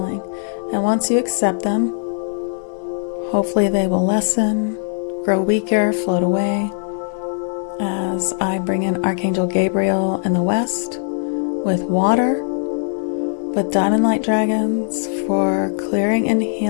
And once you accept them, hopefully they will lessen, grow weaker, float away. As I bring in Archangel Gabriel in the west with water, with diamond light dragons for clearing and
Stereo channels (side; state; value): right; silent; digital silence